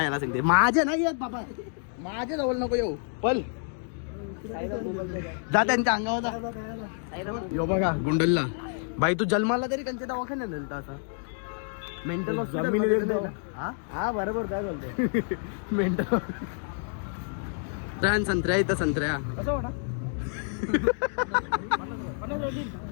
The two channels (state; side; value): silent; right; 57 dB below the other